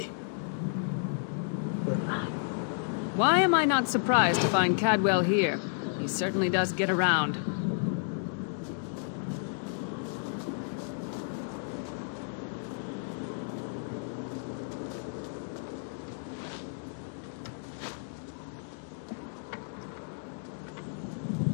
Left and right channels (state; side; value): silent; right; digital silence